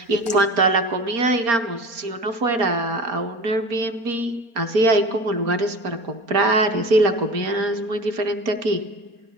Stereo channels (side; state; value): left; late; 4.3 ms